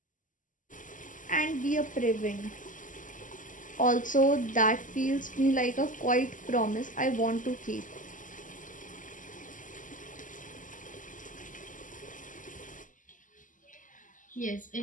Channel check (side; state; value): right; late; 0.38 ms